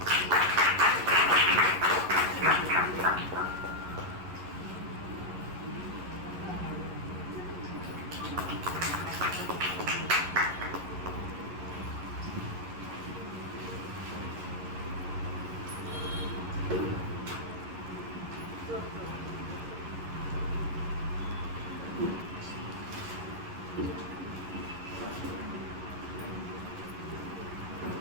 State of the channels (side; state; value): left; late; 11 ms